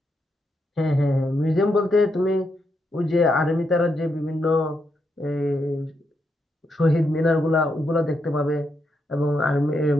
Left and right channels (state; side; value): normal; both; correlation 0.82